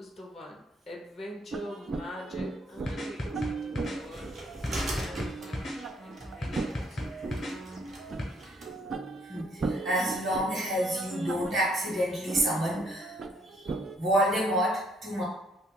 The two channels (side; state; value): both; normal; correlation 0.67